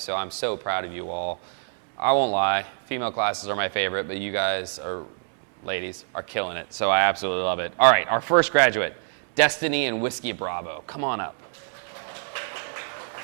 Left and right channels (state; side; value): silent; left; digital silence